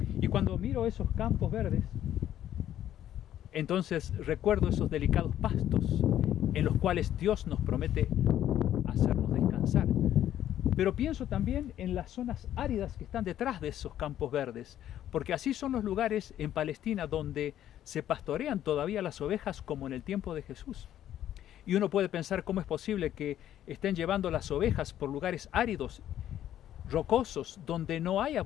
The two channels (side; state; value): right; quieter; 11.5 dB